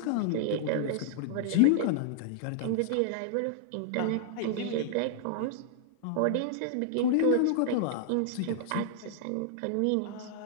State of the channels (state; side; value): different; both; correlation -0.01